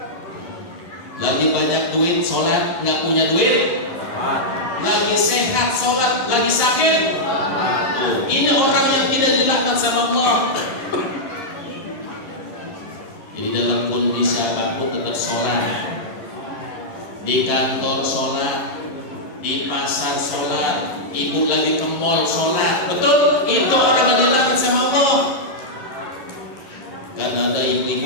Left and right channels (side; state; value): right; late; 11 ms